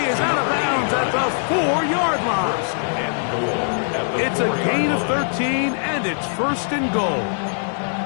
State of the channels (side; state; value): right; silent; digital silence